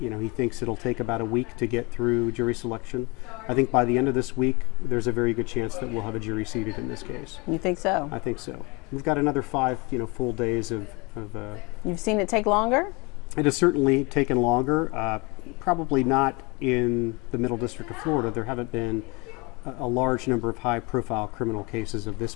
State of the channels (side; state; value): right; quieter; 27.6 dB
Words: thinks it'll take about a week to get through jury selection. I think by the end of this week, there's a very good chance that we'll have a jury seated in this case. You think so? I think so. We've got another 5, full days of You've seen it take longer? It has certainly taken longer. Probably not in the Middle District of Florida. There haven't been a large number of high-profile criminal cases of this